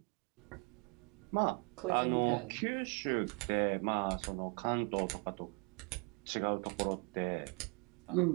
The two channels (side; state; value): left; quieter; 33.2 dB